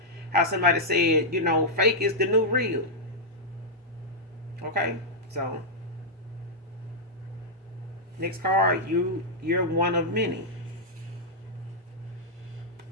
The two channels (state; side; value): normal; both; correlation -0.07